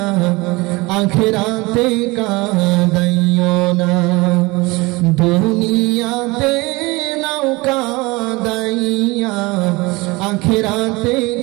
আখিরাতে কাদাইও না, দুনিয়াতে নৌকা দাইয়া আখিরাতে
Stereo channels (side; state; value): left; quieter; 23.4 dB